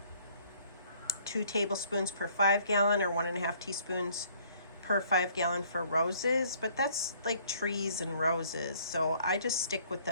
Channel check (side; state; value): both; inverted; correlation -0.60